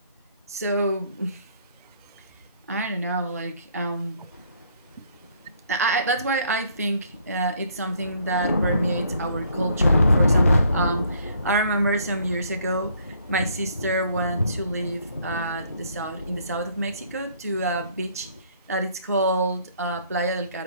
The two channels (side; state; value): both; inverted; correlation -0.64